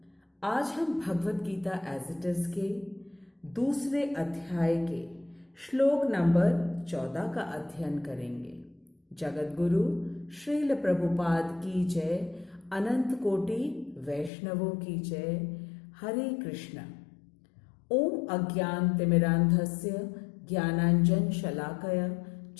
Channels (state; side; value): drops out; right; at 14.3 s